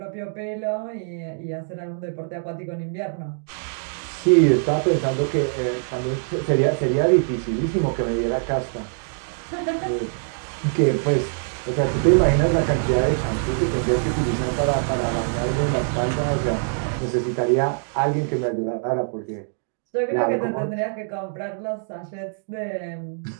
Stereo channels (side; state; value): left; silent; digital silence